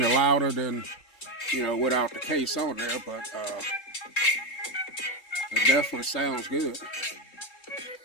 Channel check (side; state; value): right; late; 3.7 ms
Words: louder than, you know, without the case on there, but it definitely sounds good.